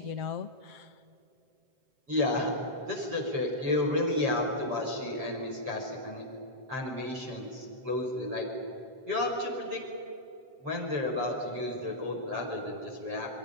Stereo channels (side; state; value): left; late; 7.7 ms